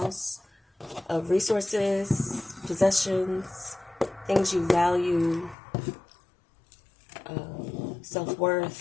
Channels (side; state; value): right; drops out; at 5.6 s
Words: of resources, possessions, things you value,